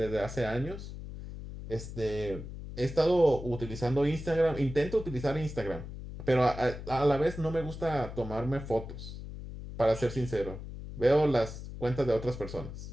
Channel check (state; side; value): noise; left; hum, 10 dB below the sound